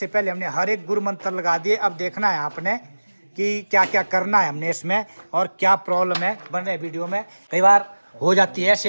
पहले हमने हर एक गुरु मंत्र लगा दिए। अब देखना है आपने कि क्या क्या करना है हमने इसमें और क्या प्रॉब्लम है। बन रहे वीडियो में कई बार हो जाती है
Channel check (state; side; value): inverted; both; correlation -1.00